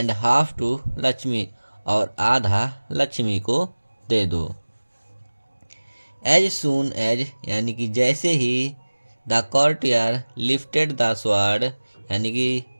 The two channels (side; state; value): both; inverted; correlation -1.00